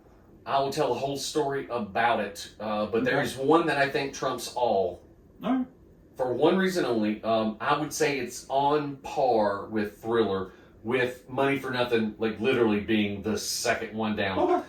I will tell a whole story about it. But there is one that I think trumps all. All right. For one reason only. I would say it's on par with Thriller, with Money for Nothing, like literally being the second one down. Okay.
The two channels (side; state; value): both; identical; correlation 1.00